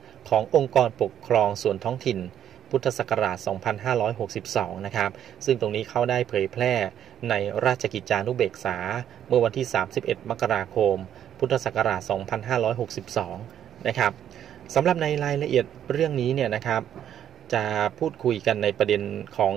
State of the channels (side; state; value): left; quieter; 10.0 dB